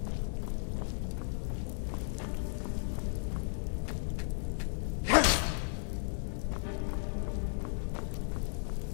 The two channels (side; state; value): right; silent; digital silence